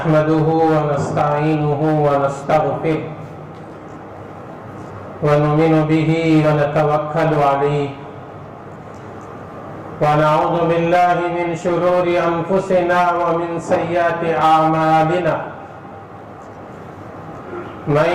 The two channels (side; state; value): both; identical; correlation 1.00